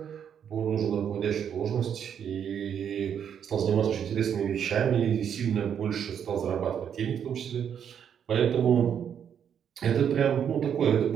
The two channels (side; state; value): left; quieter; 8.4 dB